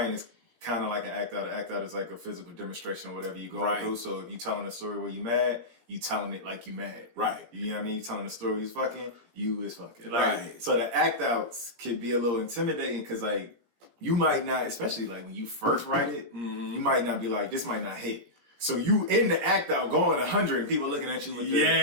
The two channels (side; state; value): left; late; 17 ms